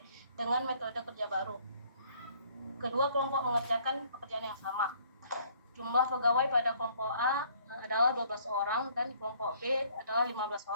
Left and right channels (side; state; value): both; inverted; correlation -0.60